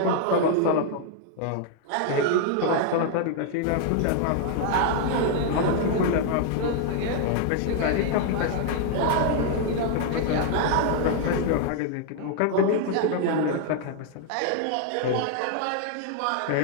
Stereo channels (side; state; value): both; different; correlation 0.00